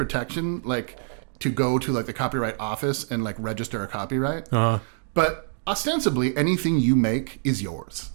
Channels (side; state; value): left; silent; digital silence